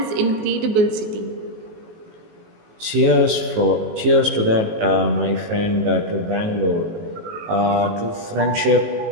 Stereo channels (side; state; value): left; late; 18 ms